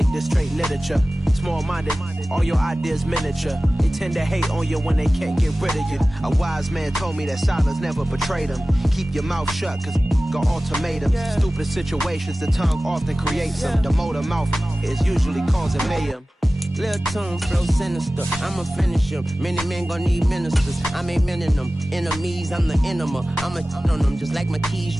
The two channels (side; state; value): both; normal; correlation 0.97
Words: this straight literature. Small-minded, all your ideas miniature. They tend to hate on you when they can't get rid of you. A wise man told me that silence never betrayed him. Keep your mouth shut, cause got ultimatums. Stupid situations, the tongue often creates them. The motor mouth is usually causing mayhem. Lil' tune, flow sinister, I'ma finish him. Many men gon' need ministers, I ain't mending them. Enemies, I'm the enema, I'ma on them. Just like my keys,